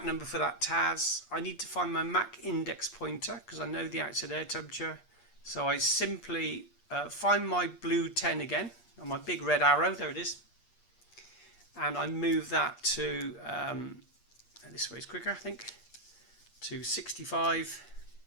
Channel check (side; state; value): right; late; 8.5 ms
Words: number for that TAS, I need to find my Mach index pointer, because I know the outside air temperature. So I simply find my blue 10 again, on my big red arrow, there it is. And I move that to, this way is quicker I think, to 65.